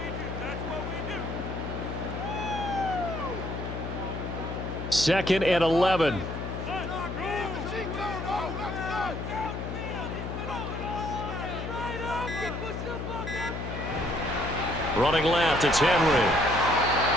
Second and 11. Running left, it's Henry.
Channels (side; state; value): left; noise; hum, 5 dB below the sound